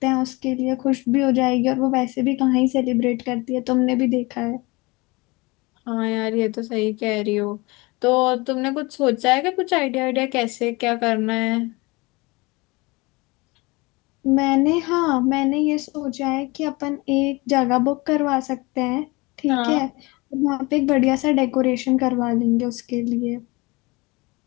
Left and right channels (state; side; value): quieter; right; 24.5 dB